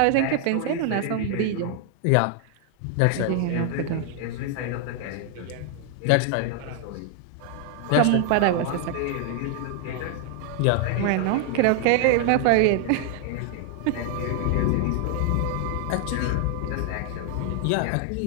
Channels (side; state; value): both; different; correlation 0.00